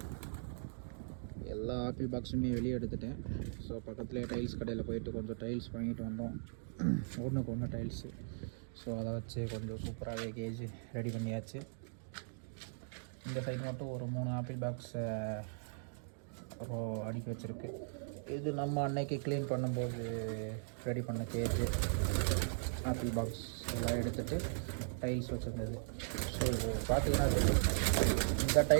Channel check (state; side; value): silent; left; digital silence